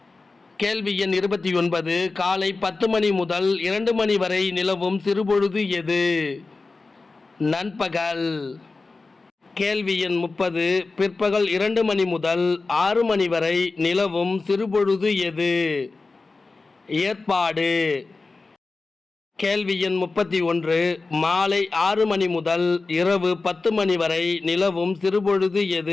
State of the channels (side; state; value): right; quieter; 3.8 dB